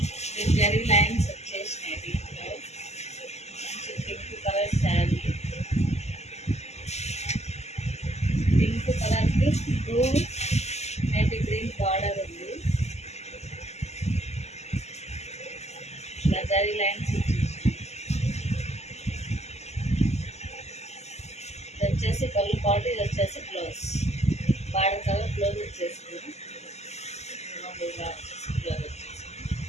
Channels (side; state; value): right; late; 0.32 ms